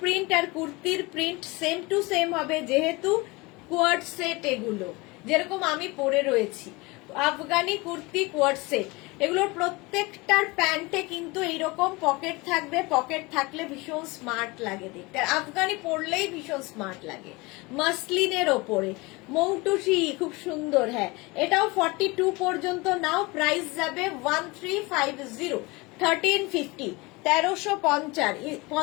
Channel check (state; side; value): quieter; right; 24.4 dB